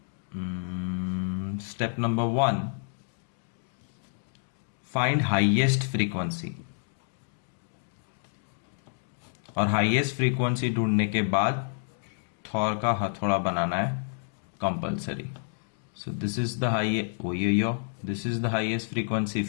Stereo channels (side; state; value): right; silent; digital silence